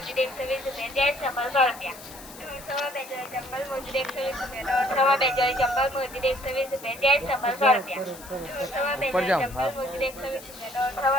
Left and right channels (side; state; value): left; noise; hiss, 17 dB below the sound